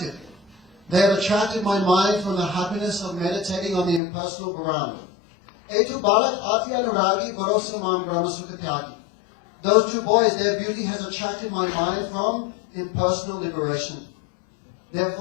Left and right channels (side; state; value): right; drops out; at 4.0 s